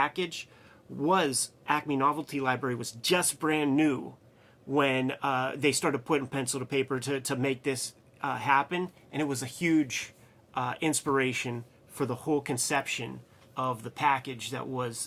was Acme Novelty Library was just brand new when they started putting pencil to paper to make this happen, and it was a huge inspiration for the whole conception of the package that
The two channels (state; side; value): identical; both; correlation 1.00